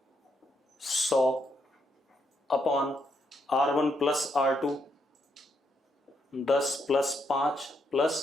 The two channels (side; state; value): both; normal; correlation 0.78